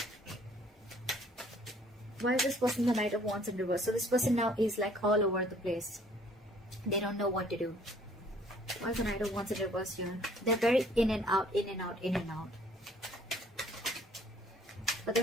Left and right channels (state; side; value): normal; both; correlation 0.59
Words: Why is this person the Knight of Wands in reverse? So this person now is like all over the place. They don't know what to do. Why is the Knight of Wands in reverse here? They're very in and out, in and out, in and out. But